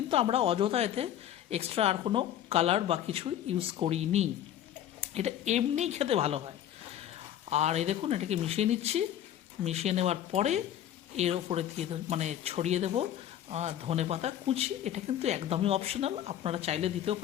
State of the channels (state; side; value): quieter; right; 11.1 dB